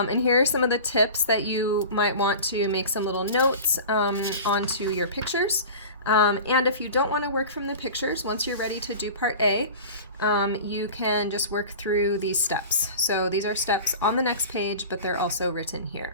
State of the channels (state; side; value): inverted; both; correlation -0.36